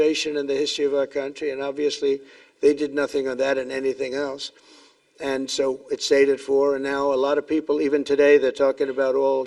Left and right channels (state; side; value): identical; both; correlation 1.00